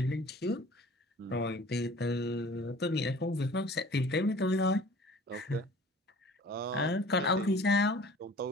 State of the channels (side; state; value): both; normal; correlation 0.47